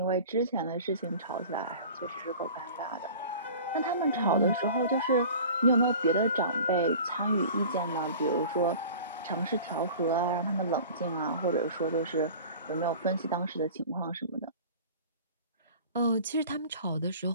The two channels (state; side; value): inverted; both; correlation -0.41